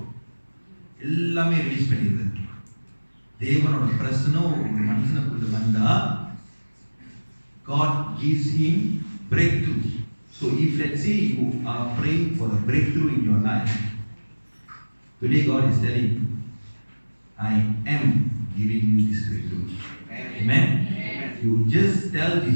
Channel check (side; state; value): both; inverted; correlation -1.00